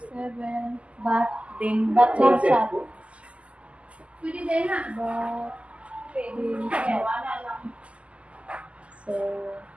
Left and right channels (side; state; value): left; late; 0.059 ms